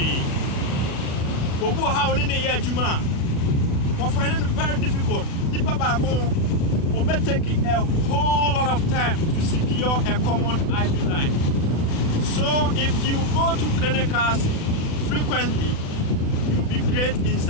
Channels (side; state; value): right; late; 36 ms